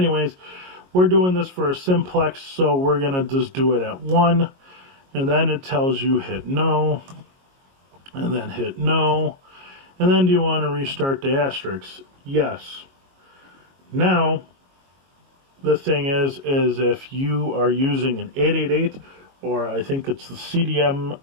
we're doing this for a simplex, so we're going to just do it at 1. And then it tells you hit no, and then hit no, and then do you want to restart the asterisk? Yes. Now, the thing is if you are using an 888, or I think it's the CDM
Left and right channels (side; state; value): left; late; 22 ms